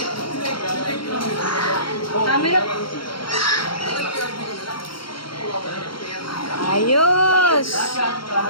Camera po. Ayos.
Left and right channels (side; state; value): right; late; 0.73 ms